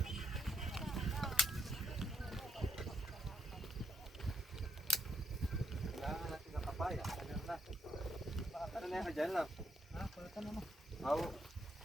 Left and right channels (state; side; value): normal; both; correlation 0.72